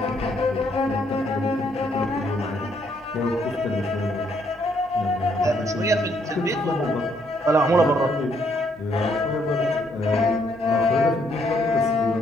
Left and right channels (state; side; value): normal; both; correlation 0.71